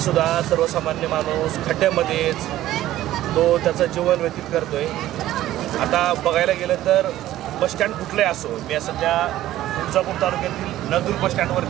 सर्वसामान्य माणूस खड्ड्यामध्येच तो त्याचं जीवन व्यतीत करतोय। आता बघायला गेलं तर बसस्टँड कुठलंही असो, मी सध्या तुळजापूर तालुक्यातील नळदुर्ग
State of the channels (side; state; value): left; quieter; 14.1 dB